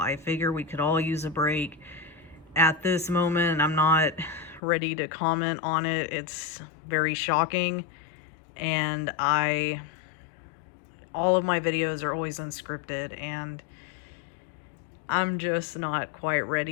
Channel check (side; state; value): right; drops out; at 4.6 s